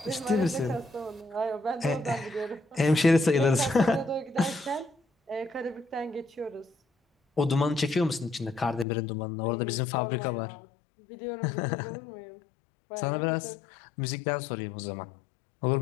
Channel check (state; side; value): drops out; right; at 8.8 s